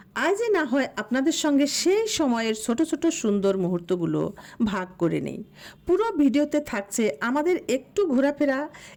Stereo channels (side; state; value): both; identical; correlation 1.00